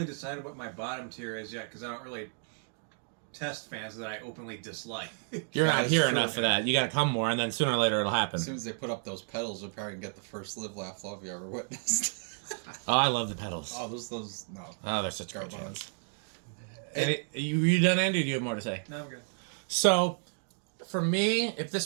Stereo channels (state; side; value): silent; left; 56 dB below the other